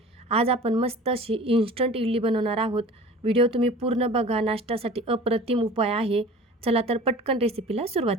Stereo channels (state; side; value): normal; both; correlation 0.42